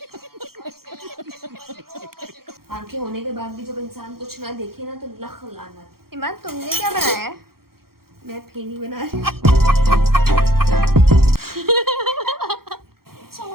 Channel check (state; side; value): late; left; 0.94 ms